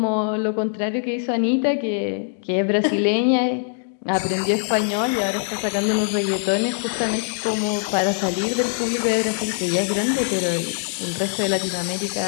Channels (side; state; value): right; silent; digital silence